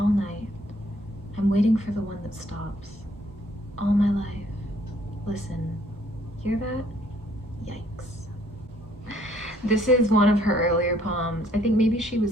night. I'm waiting for the one that stops. All my life. Listen. Hear that? Yikes. This is one of her earlier poems. I think maybe she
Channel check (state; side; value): normal; both; correlation 0.64